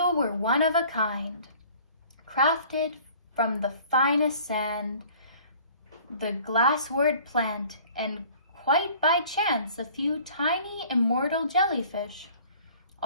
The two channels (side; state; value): both; inverted; correlation -0.50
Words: were one of a kind, crafted from the finest sand, the glasswort plant, and quite by chance a few tiny immortal jellyfish,